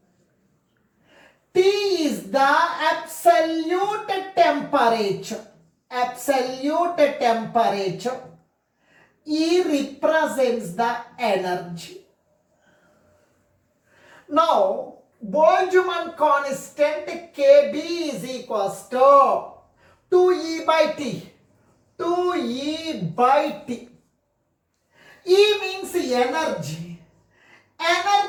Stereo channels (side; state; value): both; identical; correlation 1.00